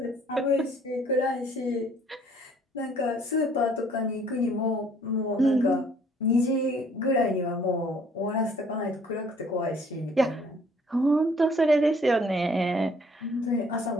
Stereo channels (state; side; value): normal; both; correlation 0.60